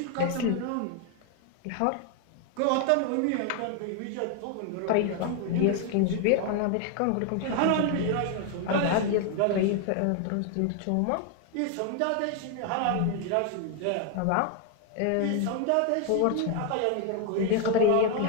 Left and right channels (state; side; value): different; both; correlation 0.01